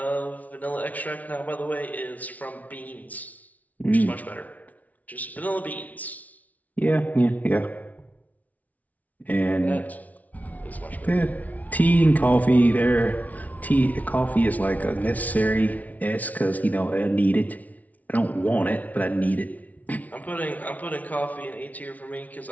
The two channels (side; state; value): right; late; 0.072 ms